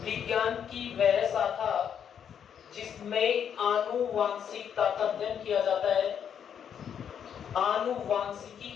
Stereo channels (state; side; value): quieter; right; 8.3 dB